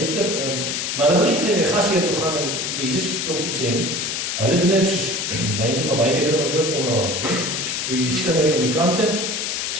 maar hulle wil nie vir die gasheer toe gaan en vir Jesus klop sê nie. Hulle doen dit soos, mense maar baie keer doen ons dood onderlangs. So die skinderie op die kante,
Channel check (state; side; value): noise; left; hiss, 2 dB below the sound